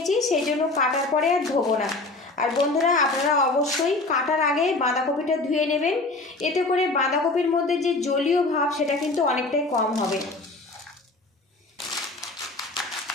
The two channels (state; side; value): quieter; right; 3.2 dB